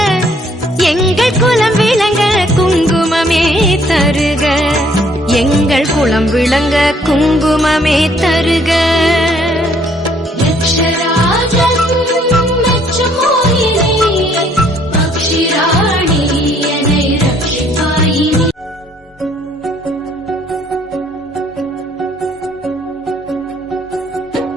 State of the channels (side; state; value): both; normal; correlation 0.63